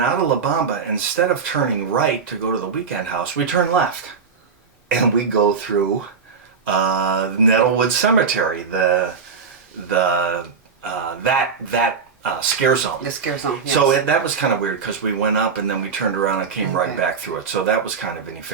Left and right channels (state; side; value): quieter; left; 5.7 dB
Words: out of La Bamba. Instead of turning right to go to the Weekend House, we turn left. And we go through Nettlewood Cemetery, that scare zone. The scare zone, yes. So that was kind of weird, because we went up and then we turned around and came right back through it. So that was kind of